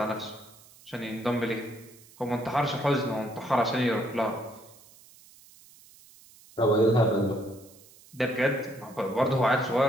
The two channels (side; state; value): right; noise; hiss, 24 dB below the sound